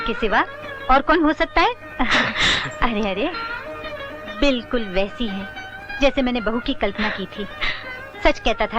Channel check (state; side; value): identical; both; correlation 1.00